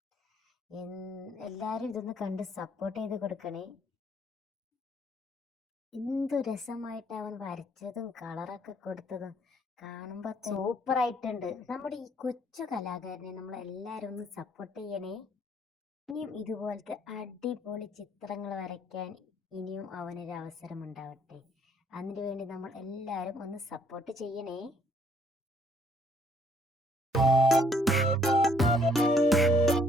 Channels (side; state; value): both; normal; correlation 0.64